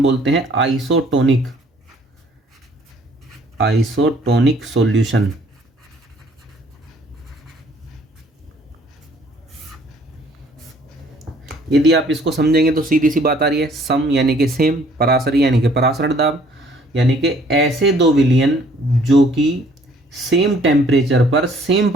बोलते हैं आइसोटोनिक, आइसोटोनिक सॉल्यूशन। यदि आप इसको समझेंगे तो सीधी सी बात आ रही है, सम यानी कि सेम, परासरी यानी कि परासरण दाब, यानी कि ऐसे दो विलयन जो कि सेम टेम्परेचर पर सेम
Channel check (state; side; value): normal; both; correlation 0.59